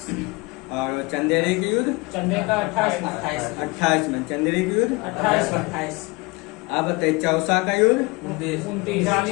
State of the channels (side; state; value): right; quieter; 25.7 dB